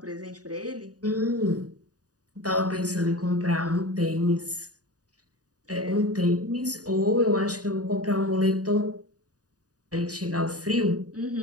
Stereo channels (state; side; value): late; left; 0.68 ms